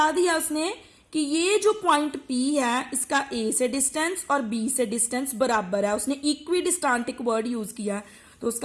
दिया उसने कि ये जो पॉइंट P है इसका A से डिस्टेंस और B से डिस्टेंस बराबर है। उसने इक्विडिस्टेंट एक वर्ड यूज किया, तो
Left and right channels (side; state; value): both; identical; correlation 1.00